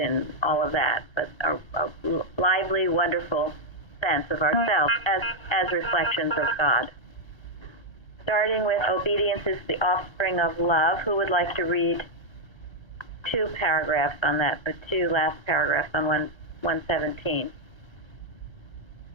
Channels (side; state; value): right; late; 1.3 ms